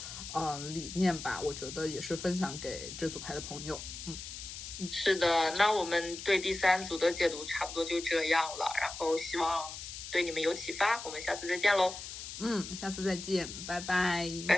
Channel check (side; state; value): left; noise; hiss, 9 dB below the sound